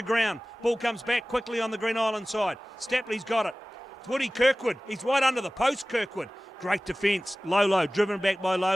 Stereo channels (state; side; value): normal; both; correlation 0.98